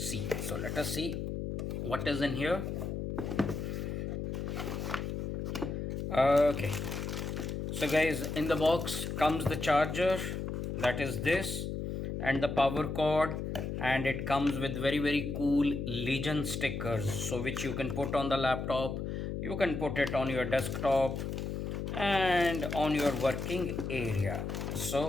So let us see what is in here. Okay, so guys, in the box comes the charger, that is this, and the power cord, and it comes with very cool Legion stickers, so which you can put on the laptop, you can put it on your desktop and on your working area.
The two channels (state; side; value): noise; left; hum, 3 dB below the sound